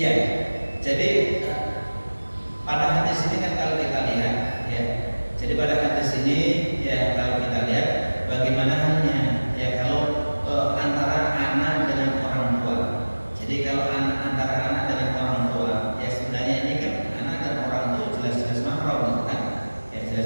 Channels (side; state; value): both; inverted; correlation -1.00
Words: jadi pada hadis ini kan kalau kita lihat, ya, jadi pada hadis ini ya kalau kita lihat bagaimana halnya, ya kalau antara anak dengan orang tua. Jadi kalau antara anak dengan orang tua, ya sebenarnya ini kan anak dan orang tua jelas-jelas mahram, kan? Ya